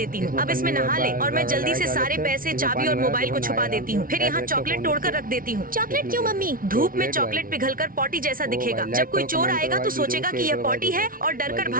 हूँ। अब इसमें नहा ले और मैं जल्दी से सारे पैसे, चाबी और मोबाइल को छुपा देती हूँ। फिर यहाँ चॉकलेट तोड़कर रख देती हूँ। चॉकलेट क्यों मम्मी? धूप में चॉकलेट पिघलकर पॉटी जैसा दिखेगा। जब कोई चोर आएगा तो सोचेगा कि यह पॉटी है और डर कर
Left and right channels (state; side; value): late; left; 0.41 ms